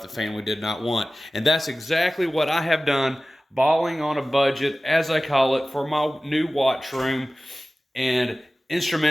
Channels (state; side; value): normal; both; correlation 0.96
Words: the family did not want. And that's exactly what I have done, balling on a budget, as I call it, for my new watch room and